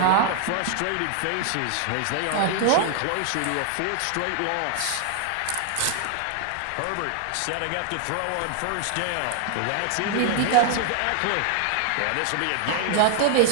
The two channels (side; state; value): both; different; correlation 0.00